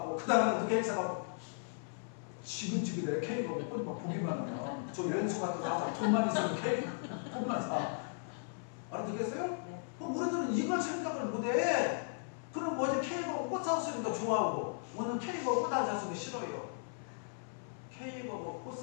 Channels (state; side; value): silent; right; 54 dB below the other